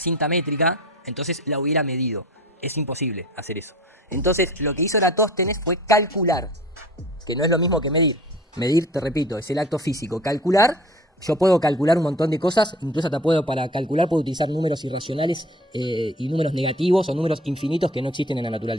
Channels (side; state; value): both; normal; correlation 0.43